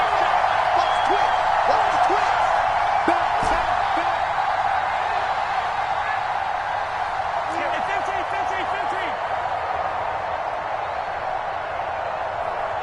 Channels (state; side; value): identical; both; correlation 1.00